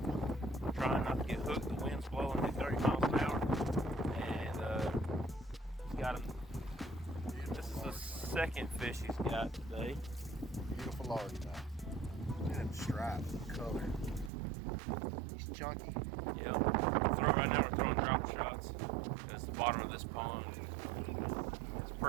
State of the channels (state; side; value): drops out; left; at 14.3 s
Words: trying not to get hooked. The wind's blowing at 30 miles an hour, and he's got him. This is the second fish he's got today. Beautiful largemouth. Look at him stripe color. He's chunky. Yep. So right now we're throwing drop shots because the bottom of this pond is